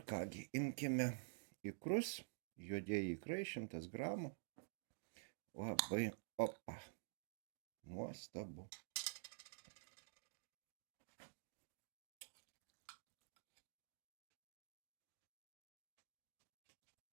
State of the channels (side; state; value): left; silent; digital silence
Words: kągi, imkime ikrus, juodieji ikrai 100 gramų. Labai, opa, nuostabu.